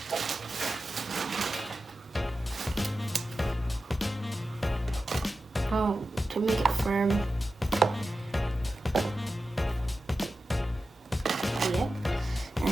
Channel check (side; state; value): both; normal; correlation 0.93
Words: Oh, to make it firm. Yep,